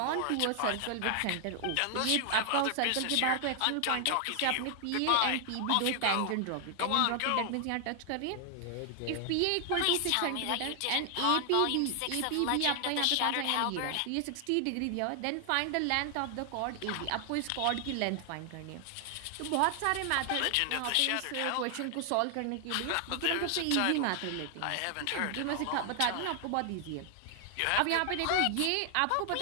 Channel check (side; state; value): both; different; correlation 0.00